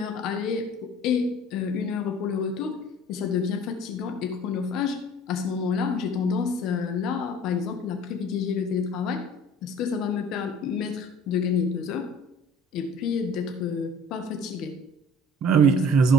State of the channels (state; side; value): normal; both; correlation 0.48